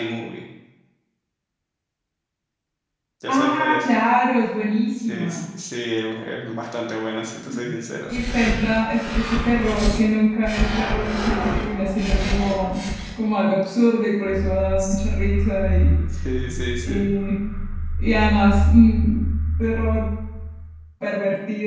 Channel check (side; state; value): both; identical; correlation 1.00